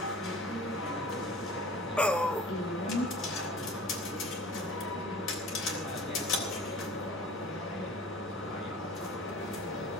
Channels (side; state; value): both; normal; correlation 0.42